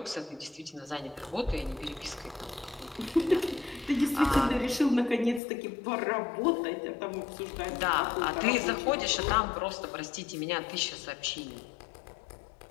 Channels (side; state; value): right; drops out; at 5.4 s